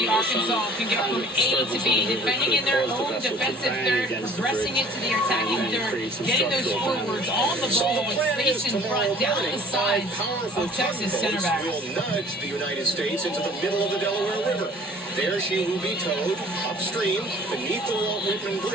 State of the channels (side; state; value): both; normal; correlation 0.51